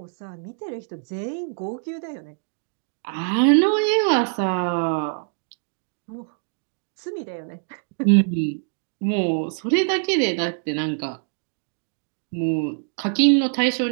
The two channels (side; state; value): left; silent; 62 dB below the other